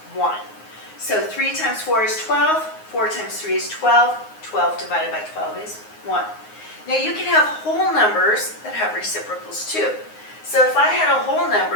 1. So 3 times 4 is 12, 4 times 3 is 12, 12 divided by 12 is 1. Now you can have whole numbers that have reciprocals too. So if I had a whole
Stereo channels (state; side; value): late; right; 9.5 ms